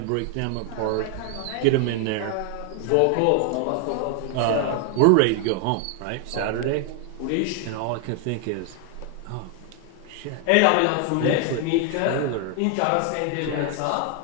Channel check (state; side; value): different; both; correlation 0.00